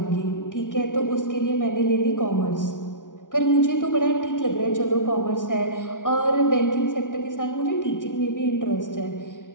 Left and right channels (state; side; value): late; right; 0.88 ms